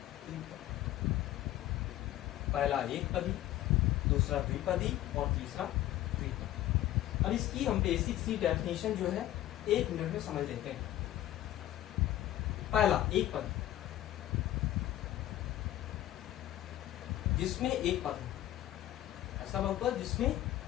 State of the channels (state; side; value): quieter; right; 13.9 dB